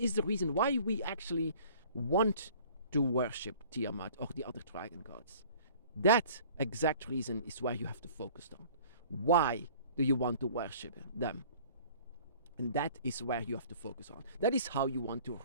the reason why we actually want to worship Tiamat or the other dragon gods? That exact reason is where you have to focus on. Why do you want to worship them? And that is where you have to focus on. That is how you want to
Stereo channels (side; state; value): both; inverted; correlation -0.49